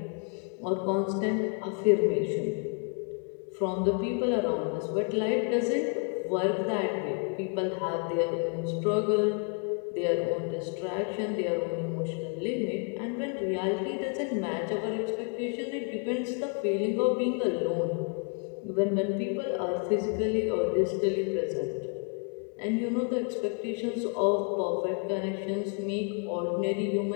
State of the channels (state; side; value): quieter; right; 38.6 dB